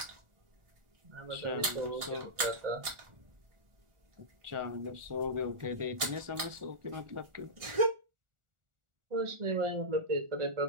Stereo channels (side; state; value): left; late; 1.4 ms